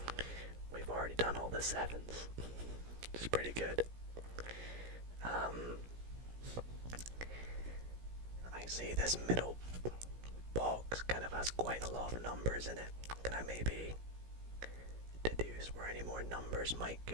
we've already done all the 7s. Which is pretty good. I see this middle box kind of has quite a lot of numbers in it. Can I maybe deduce where any more numbers might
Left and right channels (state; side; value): late; left; 17 ms